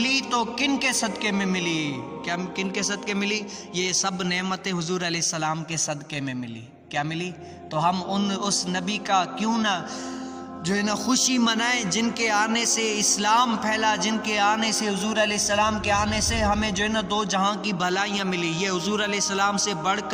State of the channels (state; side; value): identical; both; correlation 1.00